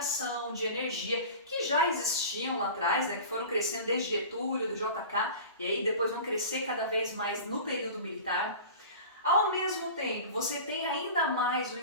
de energia, que já existiam lá atrás, né, que foram crescendo desde Getúlio, do JK, e aí depois vão crescer cada vez mais no período militar. Ao mesmo tempo, você tem ainda mais o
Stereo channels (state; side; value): inverted; both; correlation -0.37